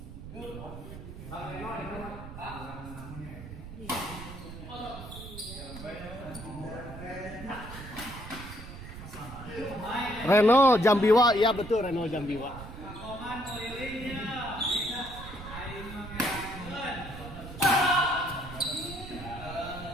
Reno Jambiwa, iya betul Reno Jambiwa.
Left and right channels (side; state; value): right; noise; rumble, 12 dB below the sound